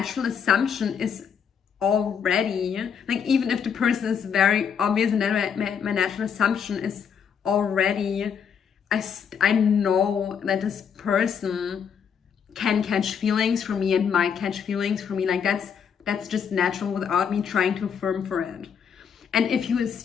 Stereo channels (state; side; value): quieter; right; 7.2 dB